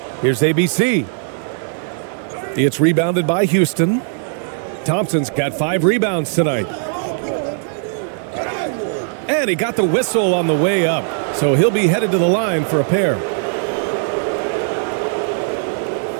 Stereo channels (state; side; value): silent; left; digital silence